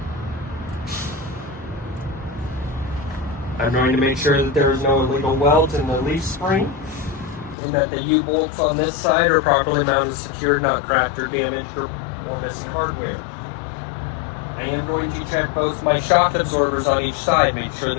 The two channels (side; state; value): right; drops out; at 7.6 s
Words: I'm going to make sure that there is no illegal welds in the leaf spring. and that the U-bolts on this side are properly mounted, secured, not cracked or damaged or missing hardware. I am going to check both my shock absorbers on each side, make sure